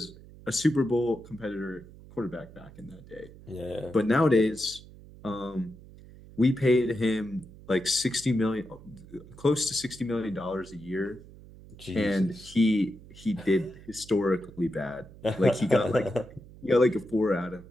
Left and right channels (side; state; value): right; noise; hum, 19 dB below the sound